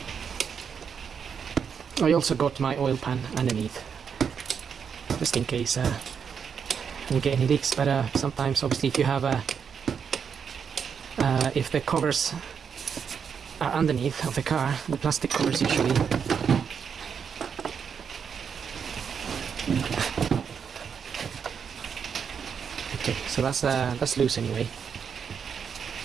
I also got my oil pan underneath, just in case we get any leaks, but sometimes obviously if you have if the covers are underneath of the car, the plastic covers usually okay, so that's loose anyway.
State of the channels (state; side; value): quieter; left; 6.9 dB